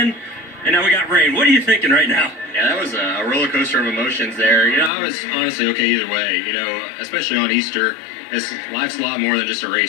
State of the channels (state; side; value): drops out; right; at 4.9 s